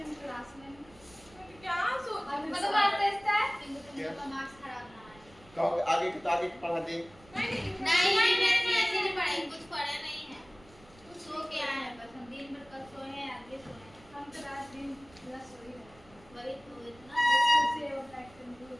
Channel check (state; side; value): noise; right; rumble, 25 dB below the sound